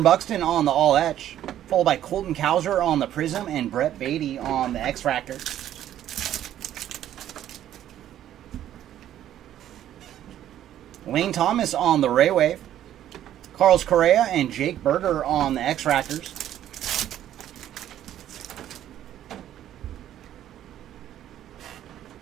Buxton on the All Etch, followed by Colton Cowser on the Prism and Brett Beatty on the X-Fractor. Lane Thomas on the Ray Wave, Carlos Correa and Jake Berger on the X-Fractors.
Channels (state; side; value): quieter; left; 11.6 dB